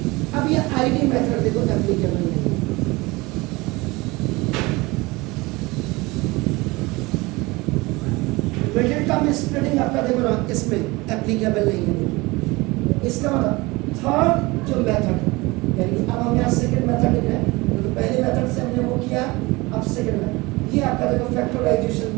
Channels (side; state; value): left; quieter; 22.9 dB